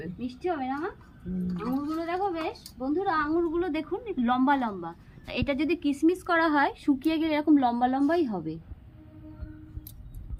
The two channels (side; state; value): both; identical; correlation 1.00